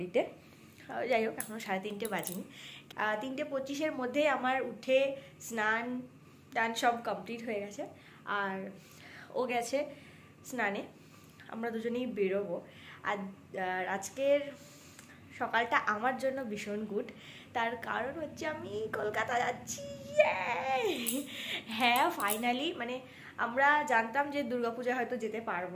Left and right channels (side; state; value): both; identical; correlation 1.00